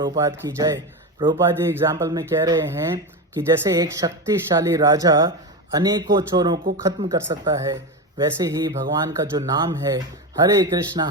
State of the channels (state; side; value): normal; both; correlation 0.18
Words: की जय। प्रभुपाद जी एग्जाम्पल में कह रहे हैं कि जैसे एक शक्तिशाली राजा अनेकों चोरों को खत्म कर सकता है, वैसे ही भगवान का जो नाम है हरे